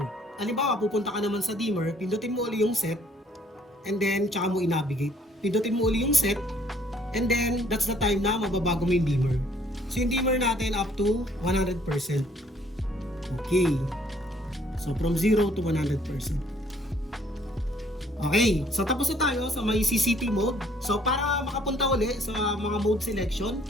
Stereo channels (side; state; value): both; normal; correlation 0.62